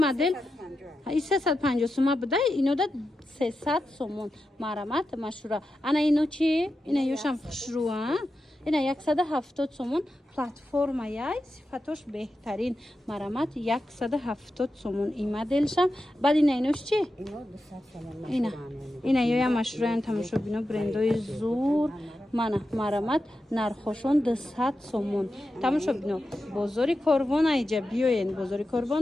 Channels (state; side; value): normal; both; correlation 0.90